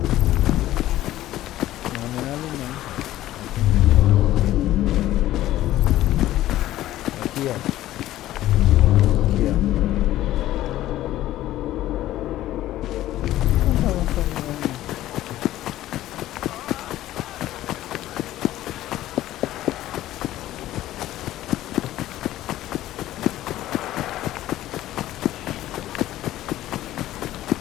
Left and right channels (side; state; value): right; quieter; 14.4 dB